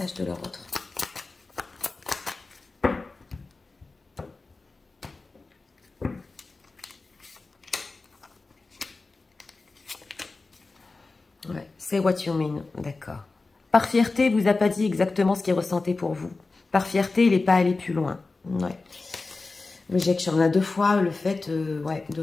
de leur autre. Ouais, c'est what you mean, d'accord. Par fierté, il vous a pas dit exactement ce qu'il ressentait pour vous. Par fierté, il n'est pas allé plus loin. Ouais. Rejection, on a deux fois le fait ouais, de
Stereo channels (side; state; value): right; quieter; 3.7 dB